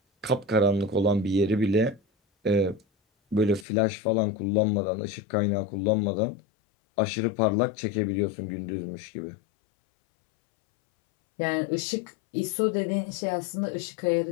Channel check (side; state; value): right; drops out; at 3.7 s